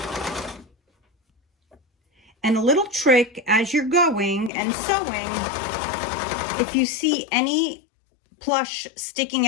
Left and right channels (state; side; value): drops out; right; at 4.5 s